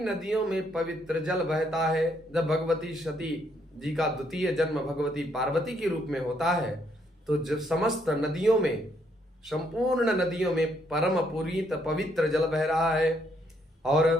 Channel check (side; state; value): both; normal; correlation 0.72